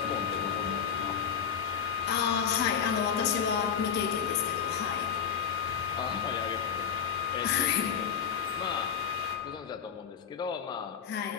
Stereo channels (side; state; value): right; quieter; 7.7 dB